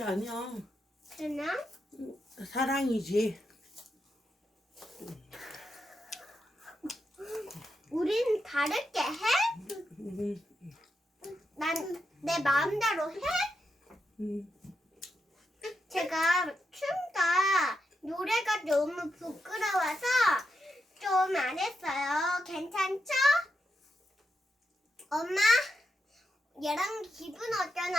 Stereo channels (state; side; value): normal; both; correlation 0.85